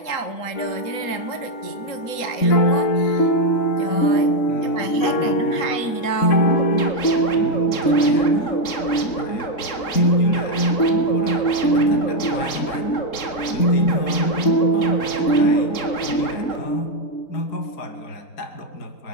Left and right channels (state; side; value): late; right; 3.7 ms